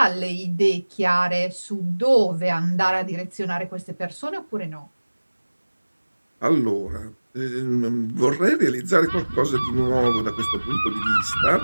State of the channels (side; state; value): both; inverted; correlation -1.00